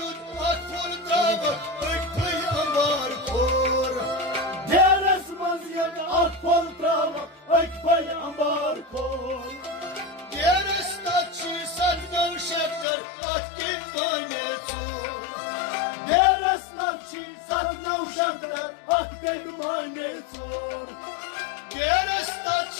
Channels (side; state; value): right; drops out; at 12.9 s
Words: akfur dava ökfey ambar kor Deres maziyet akpol trava ekpay ambar kol Deres tatçı sandan şaklar atkin manetu Deres navçi satna uşaklar akged mane sor Deres